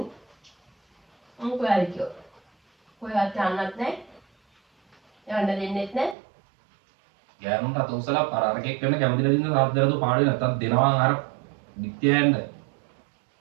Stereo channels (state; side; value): drops out; left; at 6.2 s